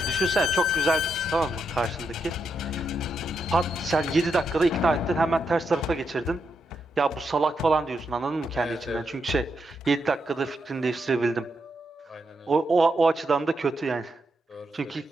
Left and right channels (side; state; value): both; normal; correlation 0.82